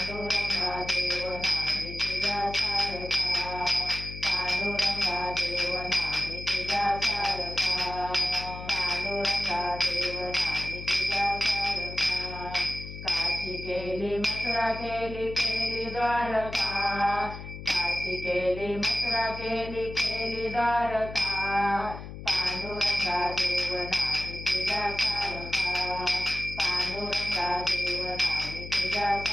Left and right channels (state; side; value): noise; left; hum, 11 dB below the sound